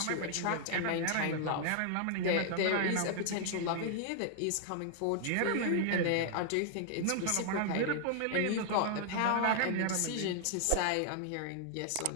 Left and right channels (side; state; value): both; different; correlation -0.01